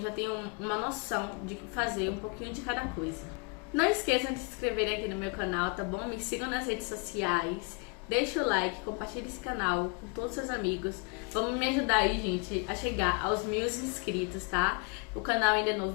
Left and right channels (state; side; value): quieter; right; 32.7 dB